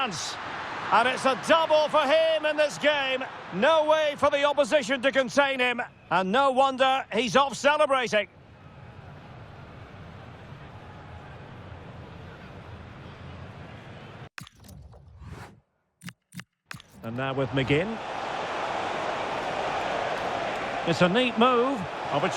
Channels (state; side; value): identical; both; correlation 1.00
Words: And it's a double for him in this game. No way for the opposition to contain him. And no wonder he's off celebrating. And now with McGinn. It's a neat move.